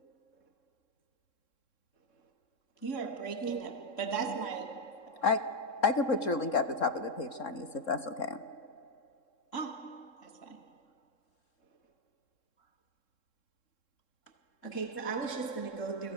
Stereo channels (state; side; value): late; right; 3.7 ms